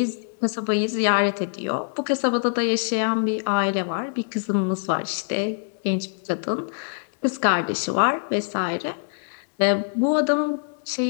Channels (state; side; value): silent; right; digital silence